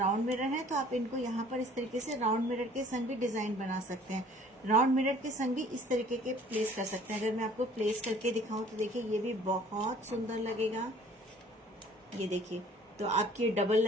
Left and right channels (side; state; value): both; normal; correlation 0.53